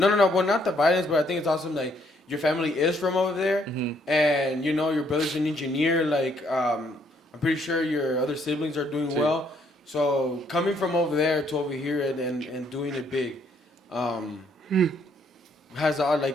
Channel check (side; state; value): both; normal; correlation 0.69